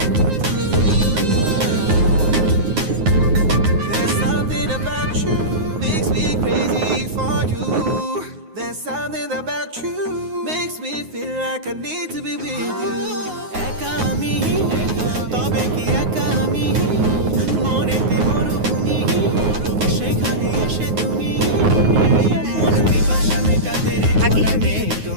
There's something about you makes me crazy for you. There's something about you makes me feel like I need to be with you. একা আমি তবে কি একা আমি মনেতে মরুভূমি সেখানে এসে তুমি মন পিপাসা মেটাতে রে আগে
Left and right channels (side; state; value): left; late; 9.5 ms